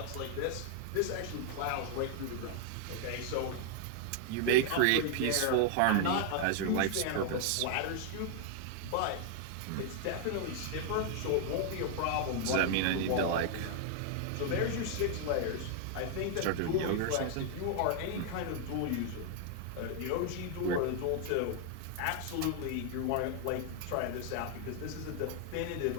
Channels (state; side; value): different; both; correlation 0.00